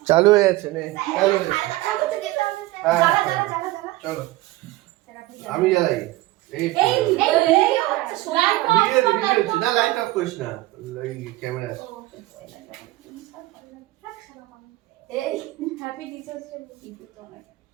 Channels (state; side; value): quieter; left; 18.2 dB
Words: চালু হয়ে যাচ্ছে নে চালু হয়ে চলো আমি জ্বালাই এই না লাইট অফ করিস না ক্যামেরা এই হ্যাপি টিচার্স ডে ভিডিও তো আমার